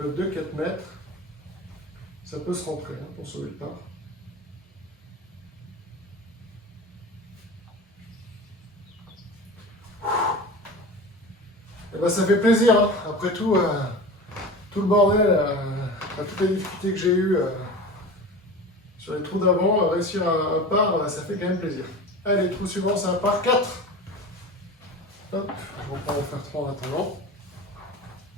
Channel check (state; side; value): normal; both; correlation 0.33